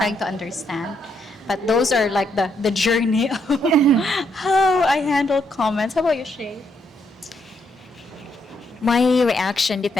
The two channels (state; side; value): normal; both; correlation 0.76